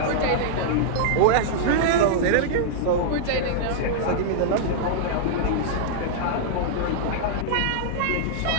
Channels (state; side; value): different; both; correlation -0.02